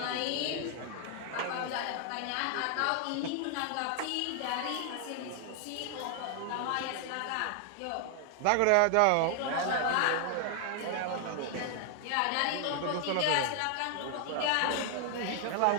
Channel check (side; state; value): both; different; correlation 0.00